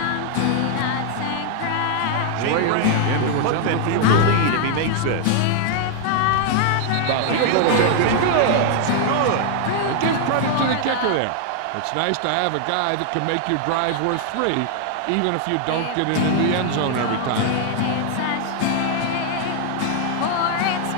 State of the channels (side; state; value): both; different; correlation 0.00